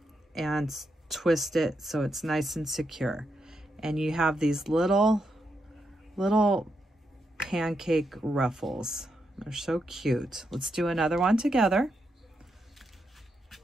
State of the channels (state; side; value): normal; both; correlation 0.83